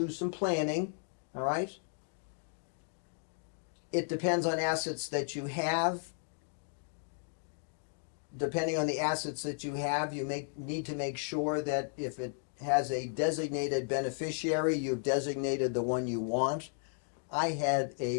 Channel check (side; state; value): right; silent; digital silence